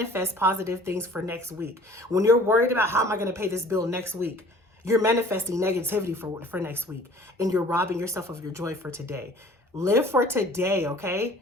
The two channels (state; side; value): normal; both; correlation 0.51